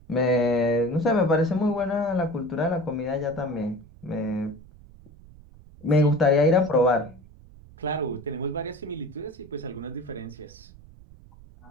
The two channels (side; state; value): right; noise; rumble, 22 dB below the sound